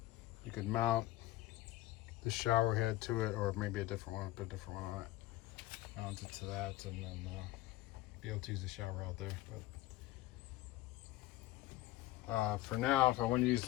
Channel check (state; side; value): quieter; right; 16.2 dB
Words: You could mount the shower head to it, or maybe a different one, put a different one on it, mount it to that, and then be able to use the shower out there. But for now, if I want to use